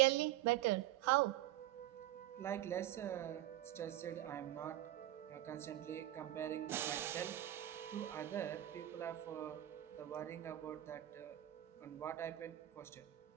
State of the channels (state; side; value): quieter; left; 14.2 dB